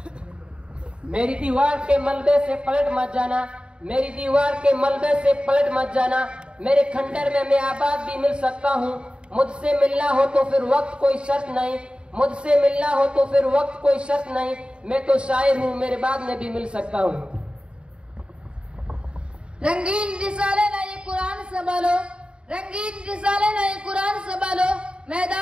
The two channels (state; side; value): late; left; 0.053 ms